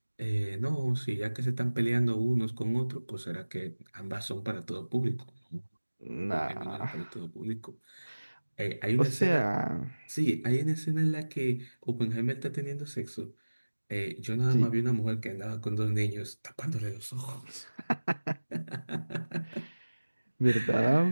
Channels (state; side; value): inverted; both; correlation -1.00